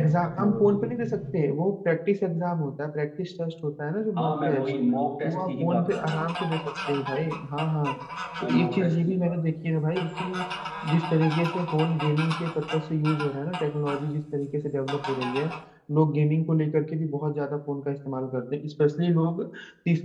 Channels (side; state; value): both; identical; correlation 1.00